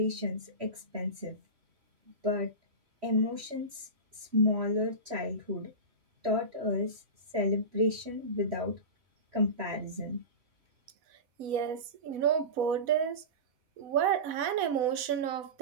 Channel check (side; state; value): left; late; 3.1 ms